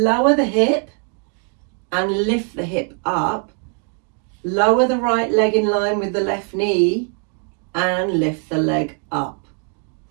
the hip and lift the hip up. Lower the right leg in line with the left knee and lift the leg up.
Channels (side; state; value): left; quieter; 39.8 dB